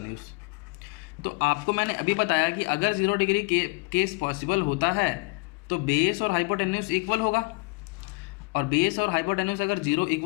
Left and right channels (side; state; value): right; quieter; 28.8 dB